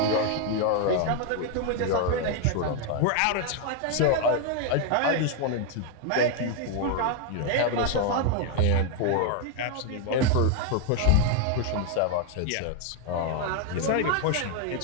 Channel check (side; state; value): both; different; correlation 0.01